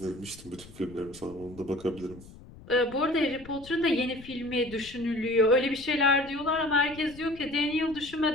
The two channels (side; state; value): left; noise; rumble, 19 dB below the sound